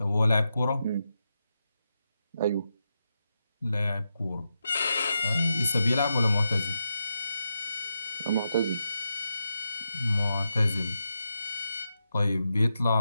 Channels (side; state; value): both; inverted; correlation -0.87